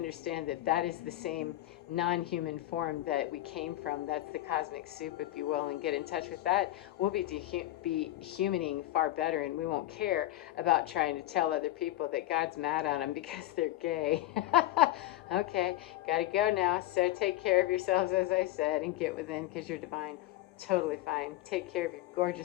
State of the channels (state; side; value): quieter; right; 15.4 dB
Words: that that is the same non-human form that we came from. That's the cosmic soup, if you will, and get in touch with that. We'll be humaning far better, and we won't care about trying to tell other people that God's mad at them because they're gay. Okay, gotta go now. So take care of yourselves, as I said, and get within, because you're divine. Totally fine. Take care of your